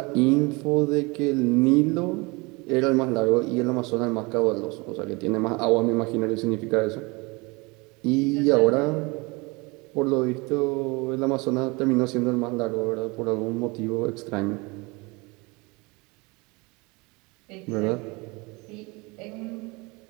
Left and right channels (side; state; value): left; quieter; 26.4 dB